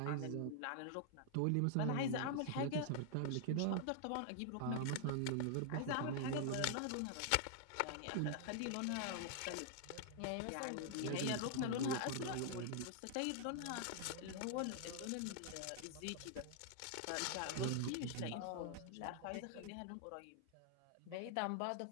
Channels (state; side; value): different; both; correlation -0.01